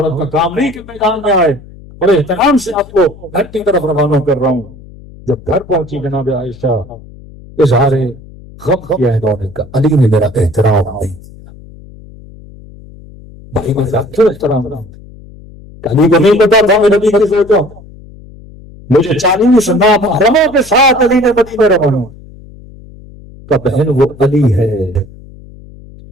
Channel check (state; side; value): noise; left; hum, 20 dB below the sound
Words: کا کام نہیں کہ میدان میں آئے. بڑے احترام سے آپ کو گھر کی طرف روانہ کر رہا ہوں. جب گھر پہنچی جناب عائشہ اظہار غم کیا انہوں نے کہا علی نے میرا احترام نہیں کیا. بھائی میں کیوں احترام رہا ہوں؟ علی کو نہیں پتا تھا میں نبی کی سوچا مجھے 40 محرموں کے ساتھ علی نے مدینے روانہ کا. بہن وہ علی ہے،